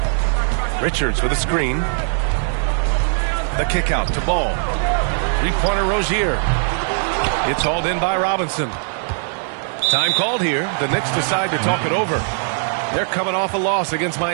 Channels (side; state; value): left; silent; 66 dB below the other